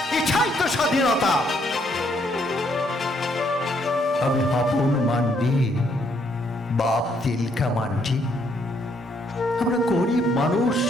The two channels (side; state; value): both; normal; correlation 0.71